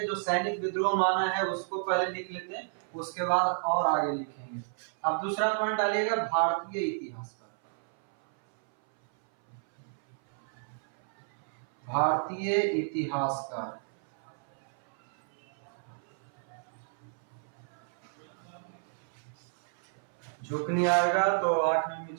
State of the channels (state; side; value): silent; left; 57 dB below the other